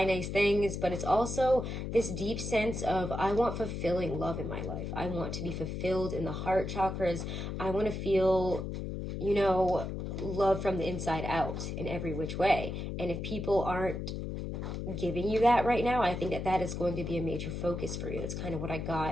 nice things, but it's also this deep sense of I want fulfilling love in my life. I want to be fulfilled in the heart chakras. I want to feel, love from the inside out in every which way. And if people aren't giving you that right now, I think that is going to be a major focus for you. That's kind of what I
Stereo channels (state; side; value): noise; left; hum, 5 dB below the sound